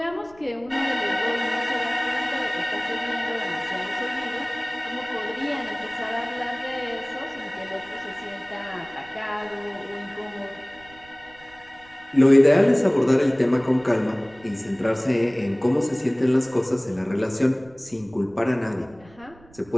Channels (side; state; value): right; noise; rumble, 25 dB below the sound